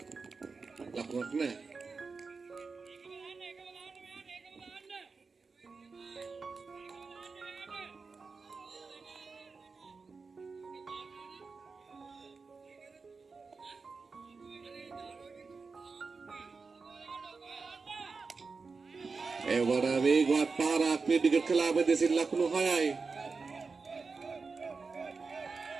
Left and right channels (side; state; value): left; quieter; 4.5 dB